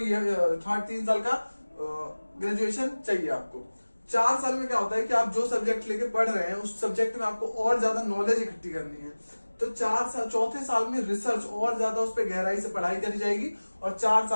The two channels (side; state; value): both; inverted; correlation -1.00